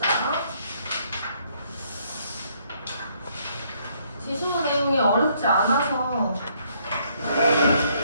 지수 내용이 어렵지 않아서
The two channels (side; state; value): both; inverted; correlation -0.69